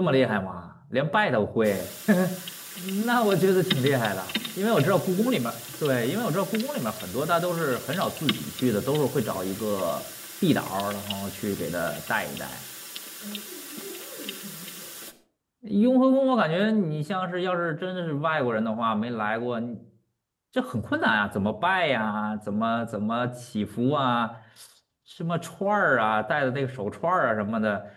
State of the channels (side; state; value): both; identical; correlation 1.00